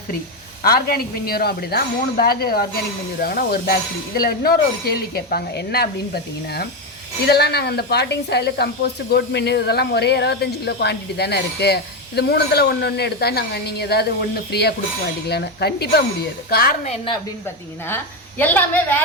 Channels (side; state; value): both; normal; correlation 0.10